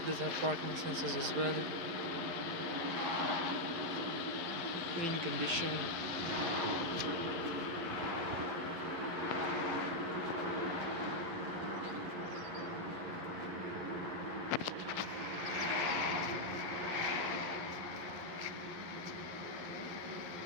does have parking sensors as well. Clean condition.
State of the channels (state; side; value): late; left; 11 ms